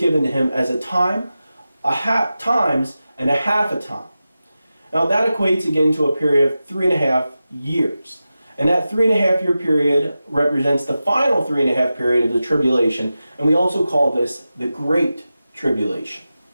to him as a time, times, and a half a time. Now that equates again to a period of 3.5 years. And that 3.5 year period represents the final 3.5 period of the tribulation, and we also call this the Great Tribulation.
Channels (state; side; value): inverted; both; correlation -0.93